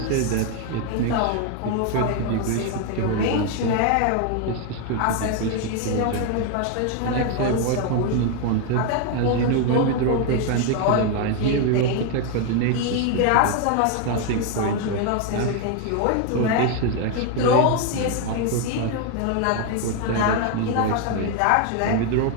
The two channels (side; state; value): both; different; correlation 0.01